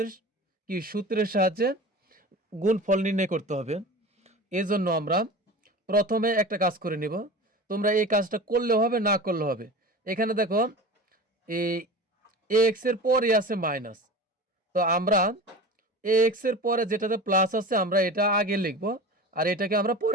কি সূত্রের সাহায্যে গুণফল নির্ণয় করতে হবে। এই জন্য আমরা প্রথমে একটা কাজ করে নিব, তোমরা এই কাজটা করলেও হবে না করলেও হবে। এখানে দেখো এই এক্স এর পরে আছে মাইনাস, তো আমরা এক্স এর পরে যেটাতে প্লাস আছে আমরা এটা আগে লিখব আর এটাকে আমরা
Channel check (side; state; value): both; normal; correlation 0.34